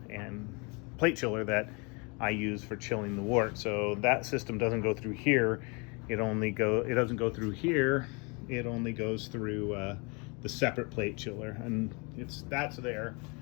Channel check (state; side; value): quieter; right; 31.0 dB